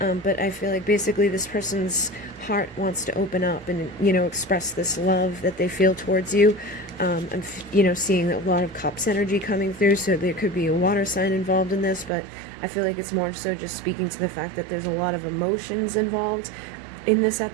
I feel like basically this person's heart wants to open up and, express this love that they feel towards you. I'm, seeing a lot of cups energy coming through, so there could be a water sign involved in this, but I feel like it's more so just speaking to the fact that there's a lot of emotions involved in this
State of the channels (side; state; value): left; drops out; at 12.1 s